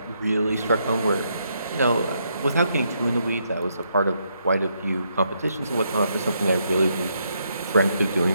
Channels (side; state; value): both; inverted; correlation -0.77